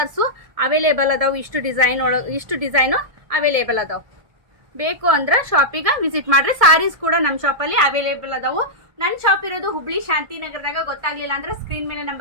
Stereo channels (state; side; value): late; left; 1.6 ms